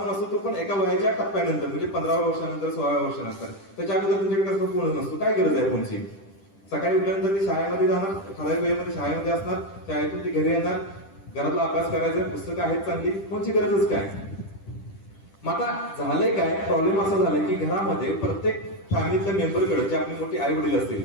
असतो, तो पण एका वयाच्या टप्प्यानंतर, म्हणजे 15व्या वर्षानंतर, 16व्या वर्षानंतर. त्याच्या अगोदर तुमच्याकडे कसं फोन नसतो. काय गरज आहे फोनची? सकाळी उठल्यानंतर ती शाळेमध्ये जाणार, ठराविक वेळेमध्ये शाळेमध्ये असणार, शाळेतून ती घरी येणार, घरातला अभ्यास करायचा, पुस्तकं आहेत चांगली, फोनची गरजच काय? मग आता झालंय काय, प्रॉब्लेम असा झालाय की घरामध्ये प्रत्येक फॅमिलीतल्या मेंबरकडे, जे आपली मोठी आई वडील असतील,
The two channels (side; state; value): right; late; 10 ms